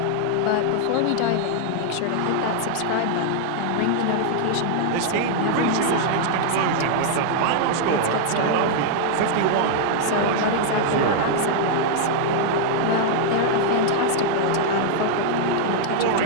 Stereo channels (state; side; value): different; both; correlation -0.01